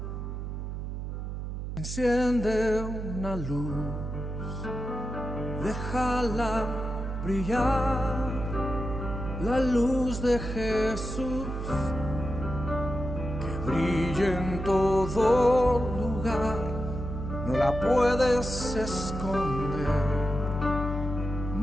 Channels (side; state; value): right; noise; hum, 5 dB below the sound